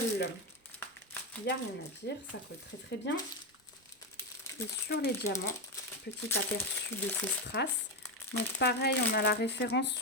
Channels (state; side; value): normal; both; correlation 0.11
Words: Il n'y a rien à dire, ça colle très très bien. Et sur les diamants, petit aperçu de ces strass. Donc pareil, on a la référence